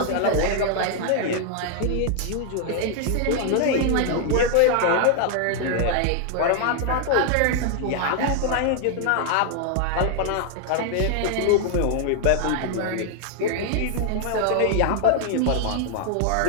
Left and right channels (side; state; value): both; different; correlation 0.00